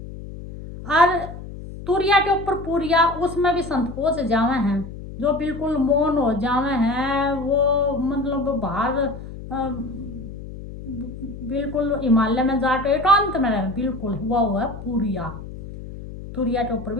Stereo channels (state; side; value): noise; left; hum, 12 dB below the sound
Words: और तुरिया के ऊपर पुरिया, उसमें भी संत पहुंच जावे हैं जो बिल्कुल मौन हो जावे हैं। वो मतलब बाहर बिल्कुल हिमालय में जाके एकांत में रहे बिल्कुल, वो है पुरिया। तुरिया के ऊपर